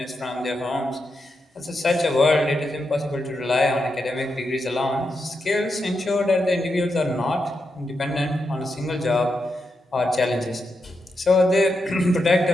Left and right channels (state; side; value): normal; both; correlation 0.85